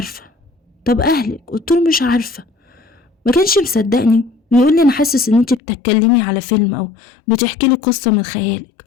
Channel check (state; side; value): drops out; right; at 5.6 s